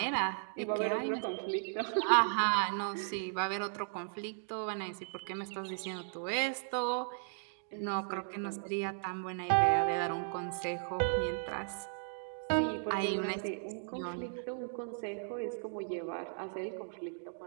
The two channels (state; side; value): silent; left; digital silence